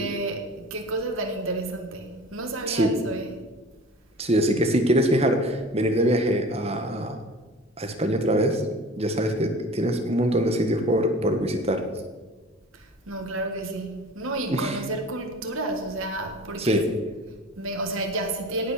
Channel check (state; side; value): normal; both; correlation 0.41